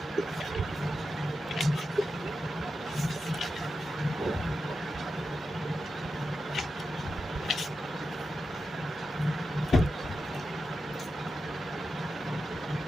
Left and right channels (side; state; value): both; normal; correlation 0.90